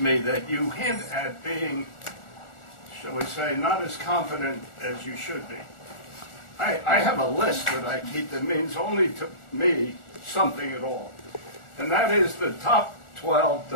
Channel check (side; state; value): right; late; 1.4 ms